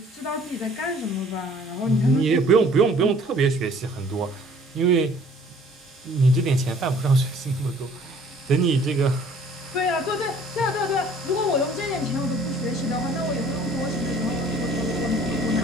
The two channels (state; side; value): normal; both; correlation 0.55